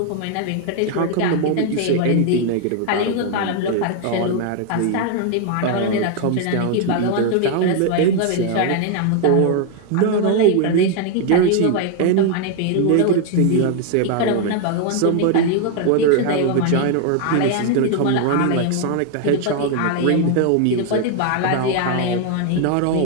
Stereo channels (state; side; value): different; both; correlation 0.00